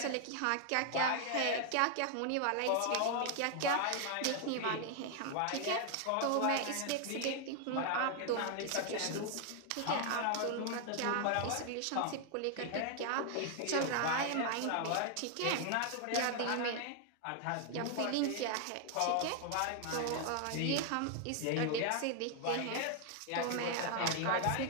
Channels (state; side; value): different; both; correlation 0.00